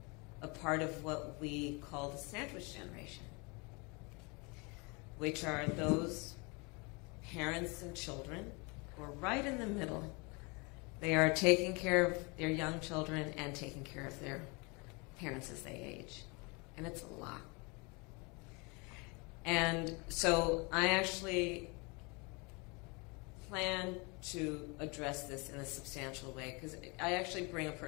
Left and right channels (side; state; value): right; quieter; 29.4 dB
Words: a part of what we call the sandwich generation, which are those parents and children who are right in the middle. They are taking care of their young children and taking care of their parents as they age. And it's a lot. And so I actually plan to address this in a substantial way because I actually bring a